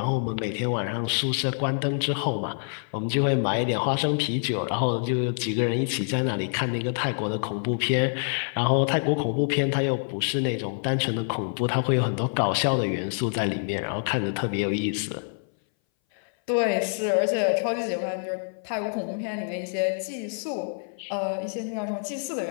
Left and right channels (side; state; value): right; silent; 59 dB below the other